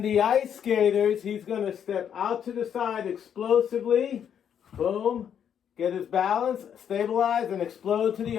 the ice skaters, he's going to step out to the side explosively. Boom. Get his balance, stabilize, and explode to the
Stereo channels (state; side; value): quieter; right; 8.6 dB